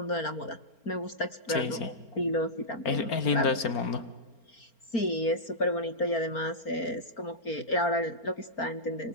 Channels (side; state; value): right; late; 4.4 ms